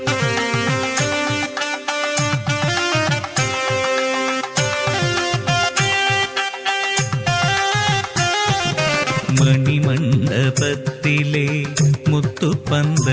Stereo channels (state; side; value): identical; both; correlation 1.00